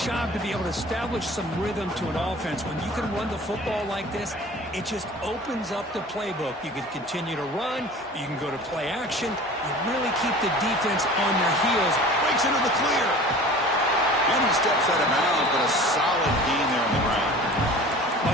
to be able to establish some rhythm to an offense. When you can run the football like this, it just opens up the playbook. You can continue to run. You can go to play action. You really keep the defense on their heels. Breaks into the clear. And he steps out of bounds, but a solid gain there on the ground. Well,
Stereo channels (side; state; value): both; normal; correlation 0.42